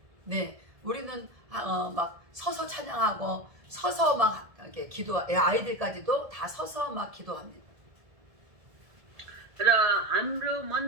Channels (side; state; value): left; late; 1.7 ms